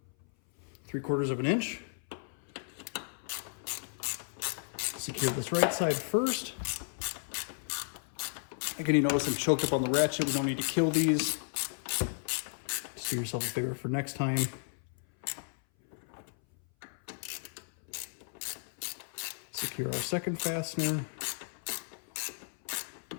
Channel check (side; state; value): right; silent; 55 dB below the other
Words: 3/4 of an inch. Secure this right side first. Again, you notice I'm choked up on the ratchet. We don't need to kill these. Just do yourself a favor for next time. Secure our second fastener.